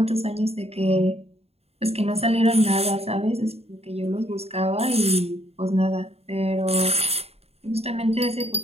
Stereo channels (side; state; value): left; late; 0.30 ms